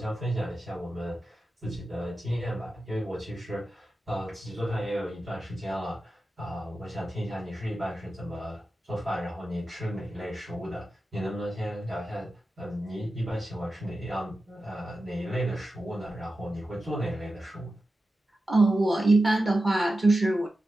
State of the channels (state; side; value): normal; both; correlation 0.92